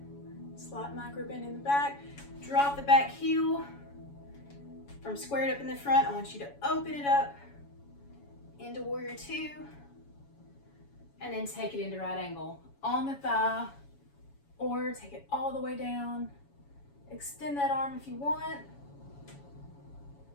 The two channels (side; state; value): right; late; 7.1 ms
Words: Slight micro bend in the back. Drop the back heel. From squared up in the front, I want you to open it up into warrior two. And then take it into right angle on the thigh, or take it all the way down. Extend that arm if you want.